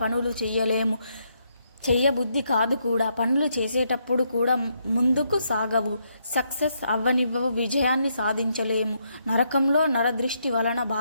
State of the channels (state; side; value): inverted; both; correlation -0.76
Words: పనులు చెయ్యబుద్ధి కాదు కూడా. పనులు చేసేటప్పుడు కూడా ముందుకు సాగవు, సక్సెస్ అవ్వనివ్వవు, విజయాన్ని సాధించలేము. నరకంలో నరదృష్టి వలన